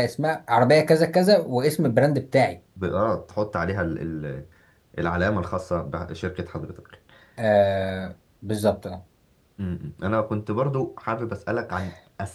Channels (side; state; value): both; identical; correlation 1.00